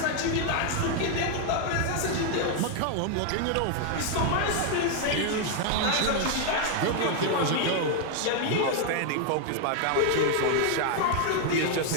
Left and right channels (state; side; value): different; both; correlation 0.00